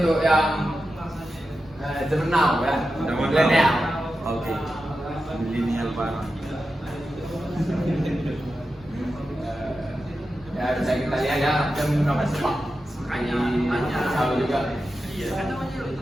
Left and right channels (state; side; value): noise; right; rumble, 24 dB below the sound